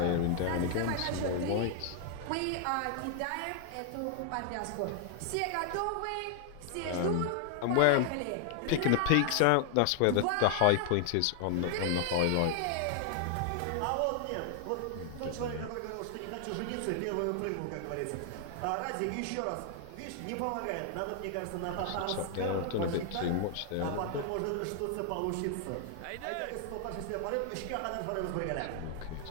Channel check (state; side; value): different; both; correlation 0.00